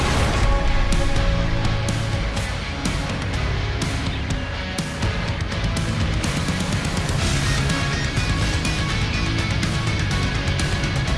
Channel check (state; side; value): identical; both; correlation 1.00